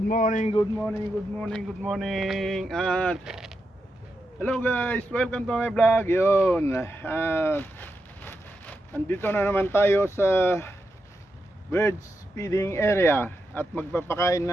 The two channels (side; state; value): both; normal; correlation 0.86